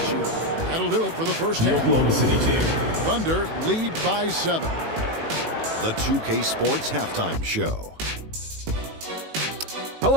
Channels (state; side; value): late; left; 18 ms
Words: you. That'll do it for the first half. Oklahoma City team. Thunder lead by 7. The 2K Sports Halftime Show.